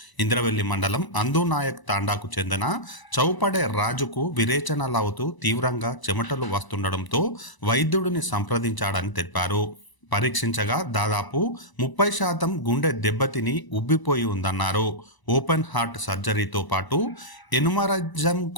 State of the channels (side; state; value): right; late; 1.0 ms